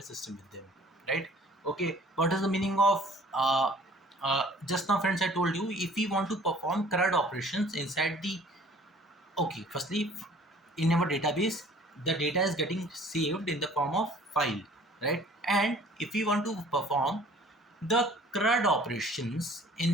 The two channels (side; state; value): both; normal; correlation 0.52